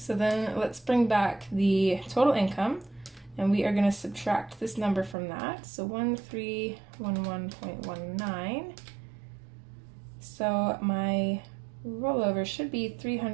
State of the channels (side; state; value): left; drops out; at 5.2 s